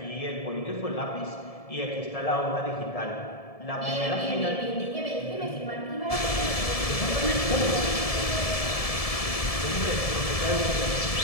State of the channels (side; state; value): right; late; 1.7 ms